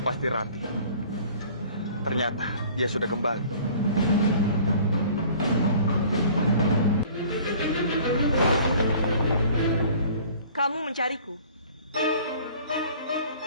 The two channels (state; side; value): inverted; both; correlation -0.50